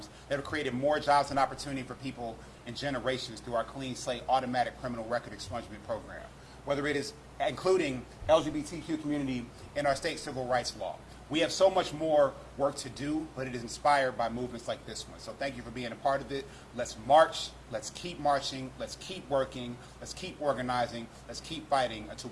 that have created more jobs and opportunity for people in generations through our Clean Slate automatic criminal record expungement program, whether it is including LGBTQ community in our state civil rights law. We have so much more work to do, but it is inspired by movements like this one. So thank you for being a part of it. Let's march, let's keep marching, let's keep working, let's keep organizing, let's keep fighting until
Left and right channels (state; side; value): identical; both; correlation 1.00